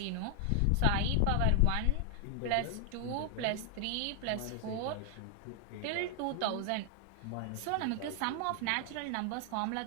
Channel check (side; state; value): both; different; correlation 0.00